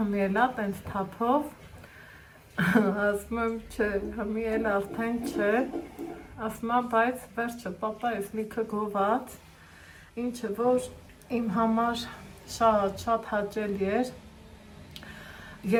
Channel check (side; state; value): both; identical; correlation 1.00